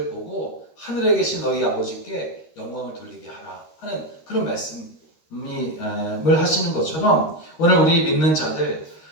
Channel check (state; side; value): late; right; 13 ms